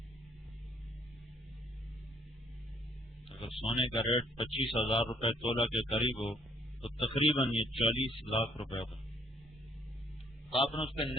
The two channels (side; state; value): both; normal; correlation 0.65